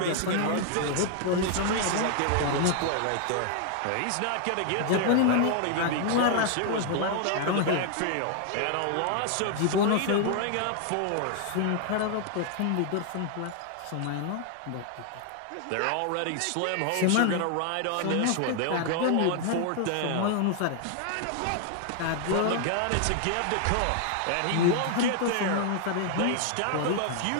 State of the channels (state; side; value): different; both; correlation 0.00